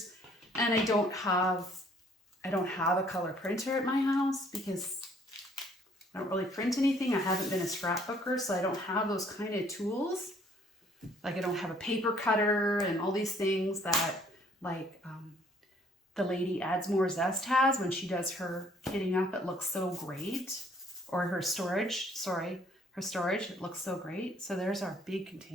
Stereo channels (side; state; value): both; normal; correlation 0.61